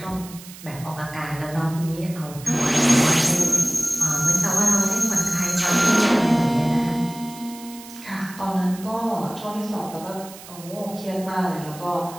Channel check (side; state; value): right; noise; hiss, 17 dB below the sound